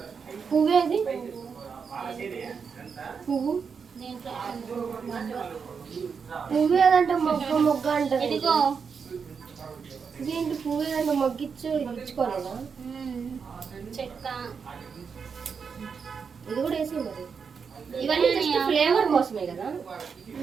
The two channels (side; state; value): left; quieter; 6.0 dB